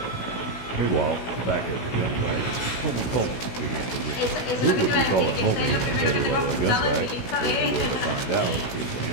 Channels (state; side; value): late; right; 16 ms